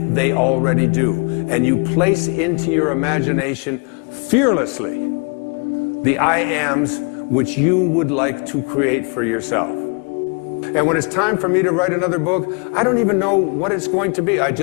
they already do. And you place into your imagination fearlessly the I ams which you would like to create for yourself. And when it's time for me to write another book, I don't even know what it's going to be. I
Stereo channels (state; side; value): quieter; right; 36.4 dB